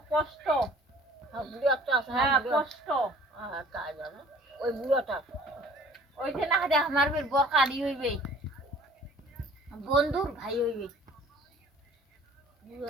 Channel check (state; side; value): normal; both; correlation 0.50